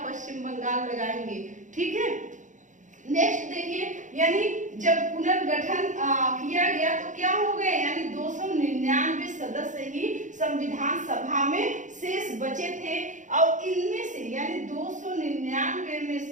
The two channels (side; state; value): left; late; 0.36 ms